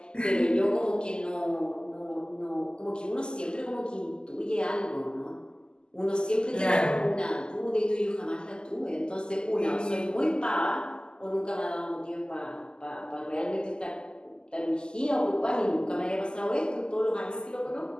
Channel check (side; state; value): right; late; 0.046 ms